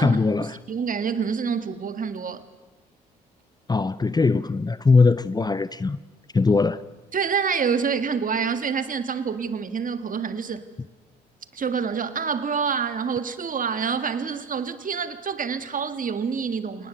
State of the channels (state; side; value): normal; both; correlation 0.60